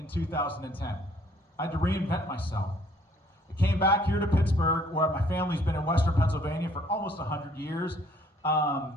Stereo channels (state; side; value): normal; both; correlation 0.61